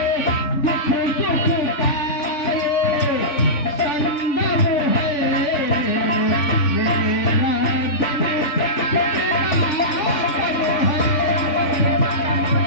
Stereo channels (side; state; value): right; late; 3.5 ms